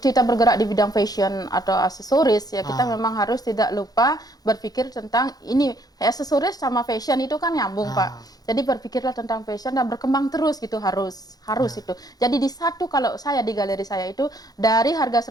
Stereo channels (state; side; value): late; right; 0.19 ms